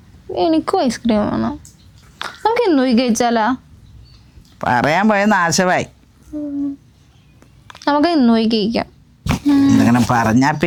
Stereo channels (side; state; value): both; identical; correlation 1.00